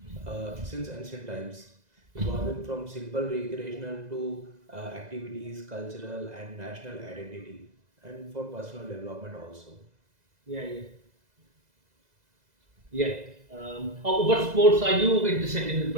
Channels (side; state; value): left; late; 2.0 ms